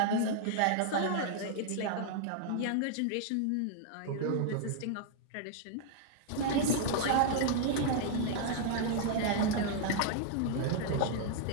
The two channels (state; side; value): different; both; correlation -0.01